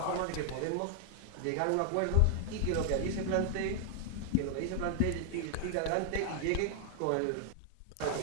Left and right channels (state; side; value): different; both; correlation 0.00